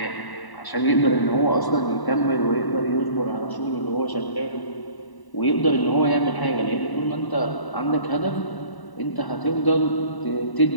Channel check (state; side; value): late; right; 1.0 ms